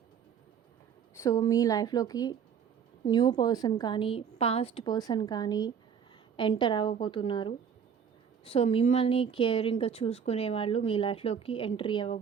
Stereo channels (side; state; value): left; quieter; 7.4 dB